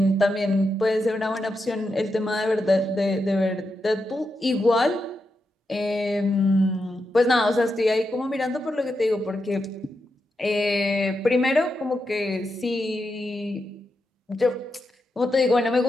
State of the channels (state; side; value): normal; both; correlation 0.86